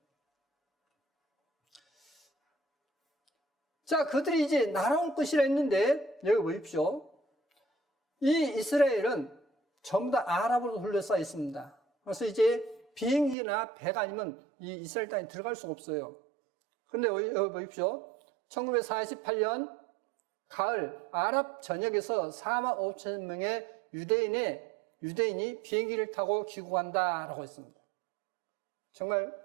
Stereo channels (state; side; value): drops out; left; at 13.4 s